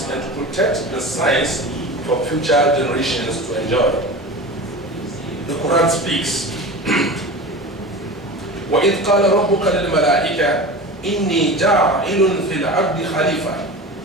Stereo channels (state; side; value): normal; both; correlation 0.32